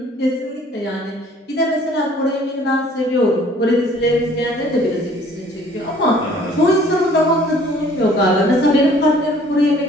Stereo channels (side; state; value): both; normal; correlation 0.55